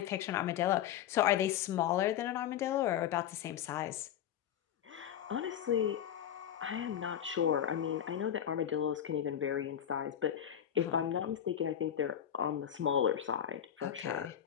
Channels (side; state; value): right; quieter; 9.9 dB